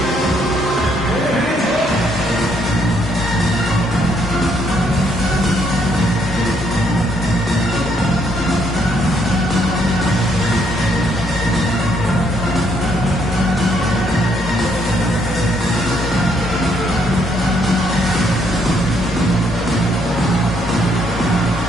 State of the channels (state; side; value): normal; both; correlation 0.71